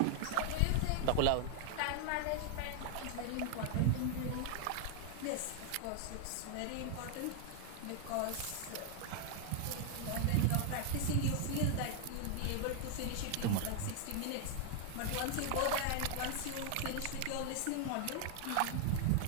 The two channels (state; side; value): different; both; correlation 0.00